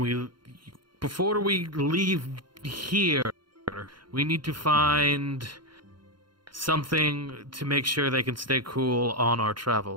before we leave here, we need to find something to make sure they can stay cool on our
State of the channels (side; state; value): left; late; 0.72 ms